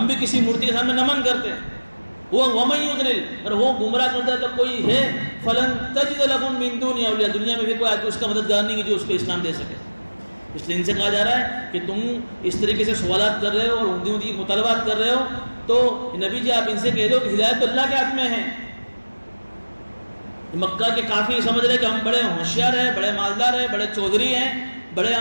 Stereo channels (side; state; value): both; inverted; correlation -1.00